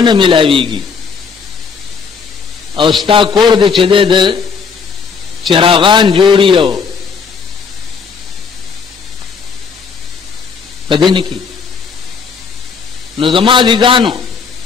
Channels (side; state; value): right; quieter; 5.6 dB